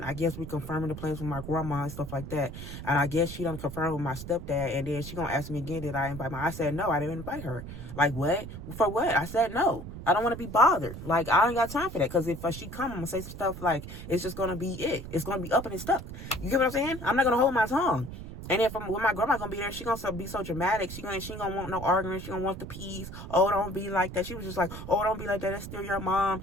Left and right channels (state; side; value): noise; right; rumble, 10 dB below the sound